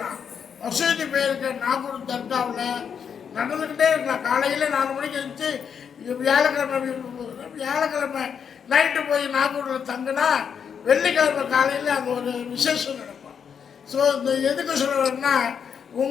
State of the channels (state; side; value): quieter; right; 7.2 dB